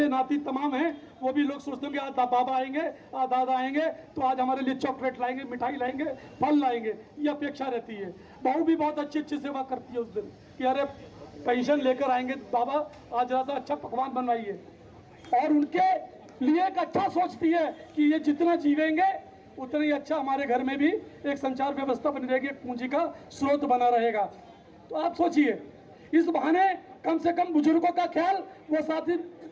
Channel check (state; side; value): identical; both; correlation 1.00